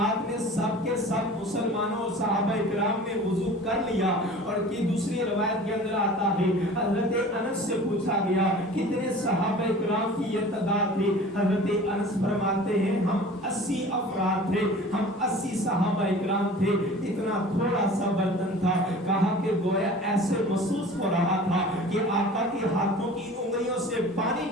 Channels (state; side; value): normal; both; correlation 0.42